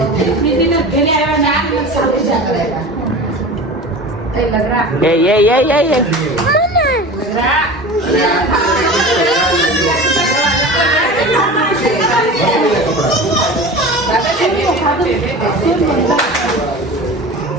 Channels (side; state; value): both; normal; correlation 0.34